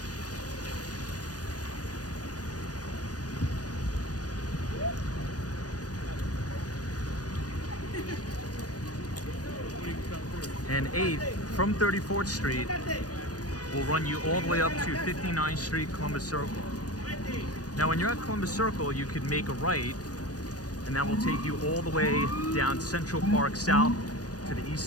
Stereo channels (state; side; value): late; right; 0.68 ms